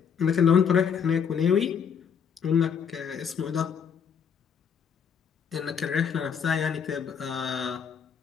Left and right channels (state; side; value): quieter; right; 7.2 dB